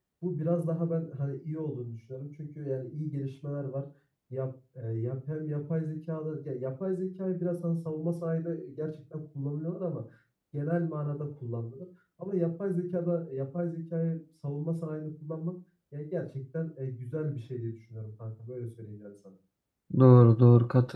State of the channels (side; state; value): both; identical; correlation 1.00